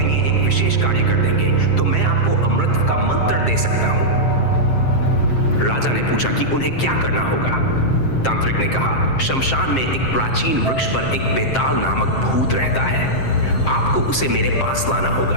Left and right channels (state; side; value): late; right; 7.6 ms